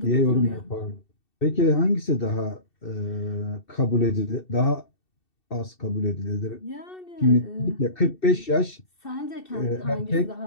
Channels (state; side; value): late; right; 2.7 ms